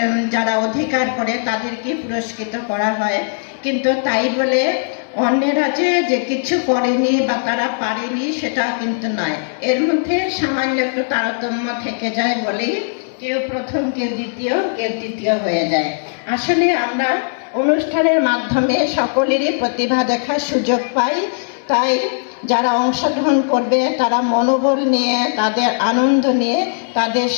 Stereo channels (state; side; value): silent; right; digital silence